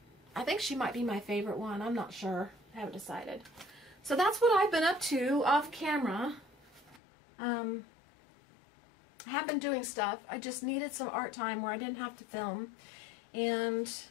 I think she might be my favorite one. I'm not sure. I haven't decided. So that's what I've been up to off camera. I have been doing stuff. I just needed some art time where I didn't have to film. And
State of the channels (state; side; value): drops out; right; at 7.0 s